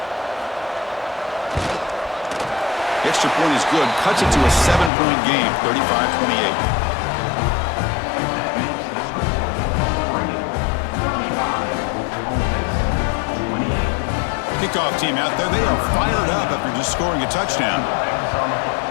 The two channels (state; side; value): drops out; right; at 4.9 s